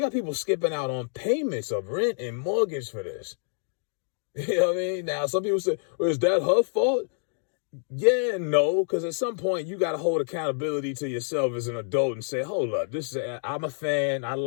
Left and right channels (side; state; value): right; silent; digital silence